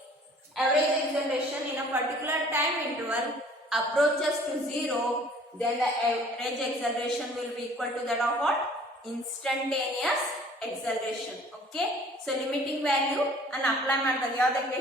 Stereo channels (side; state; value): both; normal; correlation 0.52